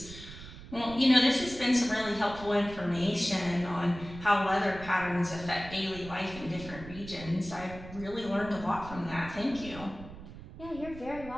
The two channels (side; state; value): right; noise; rumble, 14 dB below the sound